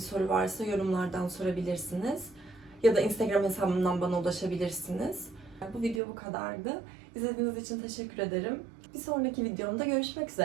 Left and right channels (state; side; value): drops out; left; at 6.0 s